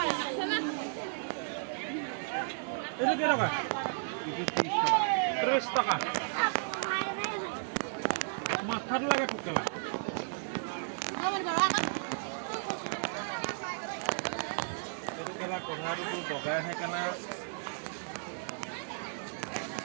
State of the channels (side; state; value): left; silent; digital silence